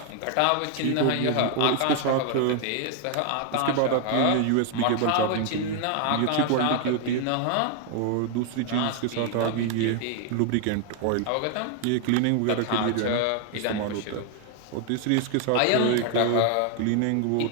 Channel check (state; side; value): different; both; correlation 0.00